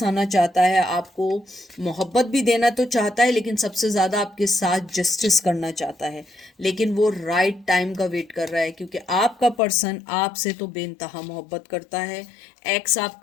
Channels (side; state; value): right; drops out; at 9.6 s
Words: आना चाहता है, आपको मोहब्बत भी देना तो चाहता है, लेकिन सबसे ज़्यादा आपके साथ जस्टिस करना चाहता है। लेकिन वो राइट टाइम का वेट कर रहा है, क्योंकि आपका पर्सन आपसे तो बेइंतहा मोहब्बत करता है। एक्स